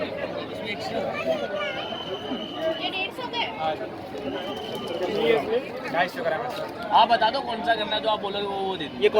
ये 150 के 250 ग्राम है। आप बता दो कौन सा करना है, जो आप बोलोगे वो दे दो। ये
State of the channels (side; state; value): both; identical; correlation 1.00